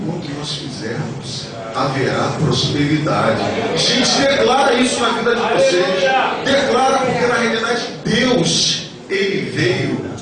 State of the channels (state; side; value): identical; both; correlation 1.00